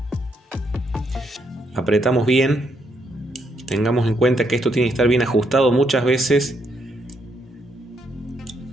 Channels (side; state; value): both; normal; correlation 0.75